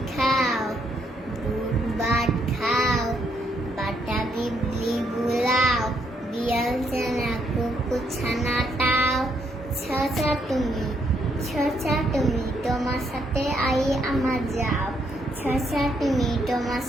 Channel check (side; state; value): both; normal; correlation 0.73